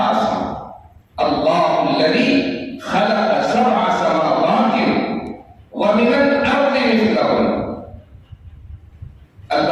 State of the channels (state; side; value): identical; both; correlation 1.00